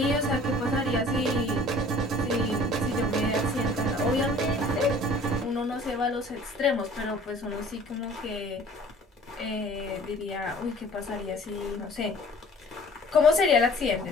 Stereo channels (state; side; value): normal; both; correlation 0.50